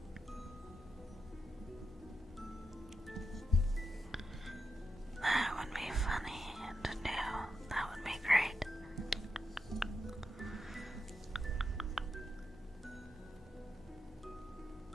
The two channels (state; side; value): normal; both; correlation 0.86